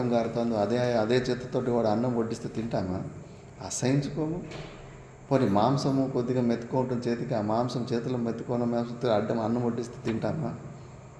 కారుతుంది, అదే చేతితోటి వాడు అన్నం వడ్డిస్తే తింటామా? అసహించుకోము. పోనీ మాంసము కొద్దిగా మెత్తుకుంటుంది చేతికి, ఆ మాంసం చేతిలో మెత్తుకున్న మాంసంతో అన్నం వడ్డిస్తే తింటామా?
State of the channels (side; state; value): both; identical; correlation 1.00